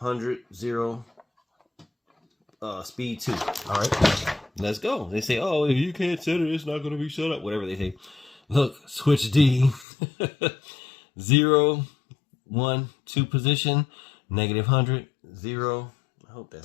0, speed 2. All right, let's go. They say, oh, if you can't set it, it's not going to be set up. Whatever they say. Look, switch D, 0, 1, 2 position, negative 100, 0. I hope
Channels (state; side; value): drops out; right; at 9.9 s